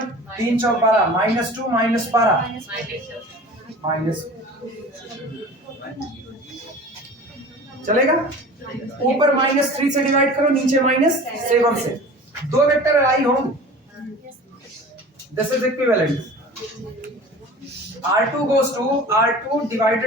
3 चौक 12 -2 -12 चलेगा। ऊपर -3 से डिवाइड करो, नीचे -7 से, 2 वेक्टर आई होंगे। This is equivalent. R2 goes to R2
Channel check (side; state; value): both; normal; correlation 0.40